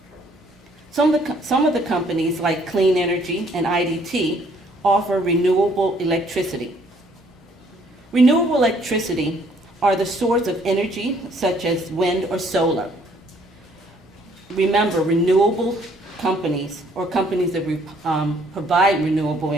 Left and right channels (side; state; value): both; normal; correlation 0.63